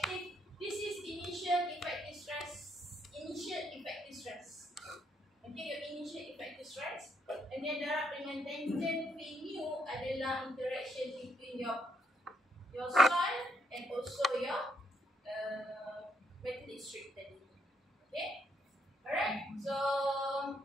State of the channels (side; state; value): both; normal; correlation 0.74